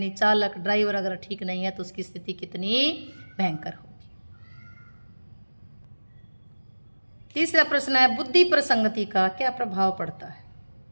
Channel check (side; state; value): both; inverted; correlation -1.00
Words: चालक ड्राइवर अगर ठीक नहीं है तो उसकी स्थिति कितनी भयंकर होगी। तीसरा प्रश्न है, बुद्धि पर संगति का क्या प्रभाव पड़ता है?